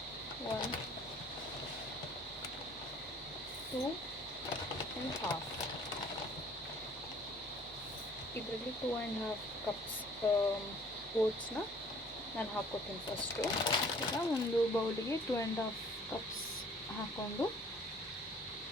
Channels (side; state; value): both; normal; correlation 0.54